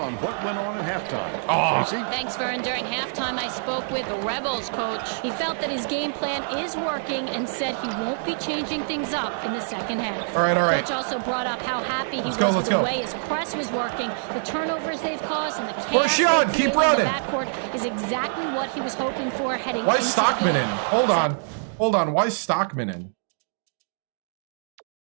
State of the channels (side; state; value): left; silent; digital silence